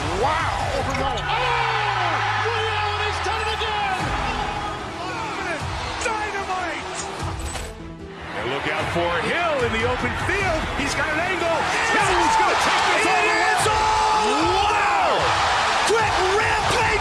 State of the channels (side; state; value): both; identical; correlation 1.00